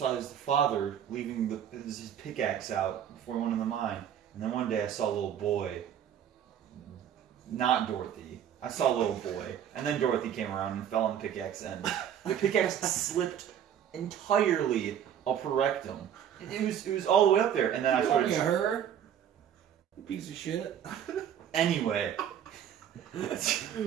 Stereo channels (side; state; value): left; quieter; 9.5 dB